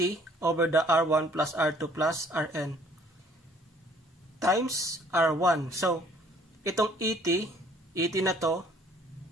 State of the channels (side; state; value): both; normal; correlation 0.58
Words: over the R1 plus R2 plus Rn times R1. So, itong ET na to,